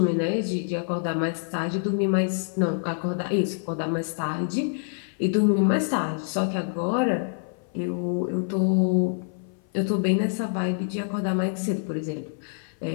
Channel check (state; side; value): silent; right; 56 dB below the other